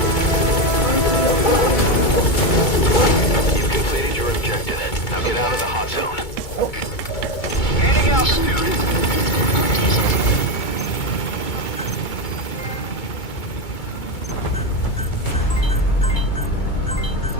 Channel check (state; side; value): late; right; 2.2 ms